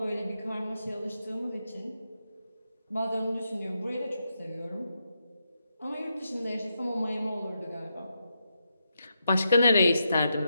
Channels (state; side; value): inverted; both; correlation -0.84